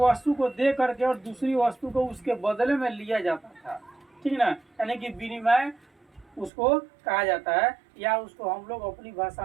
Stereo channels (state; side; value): drops out; left; at 6.5 s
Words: को दे करके और दूसरी वस्तु को उसके बदले में लिया जाता था। ठीक ना। यानी कि विनिमय उसको कहा जाता है, या उसको हम लोग अपनी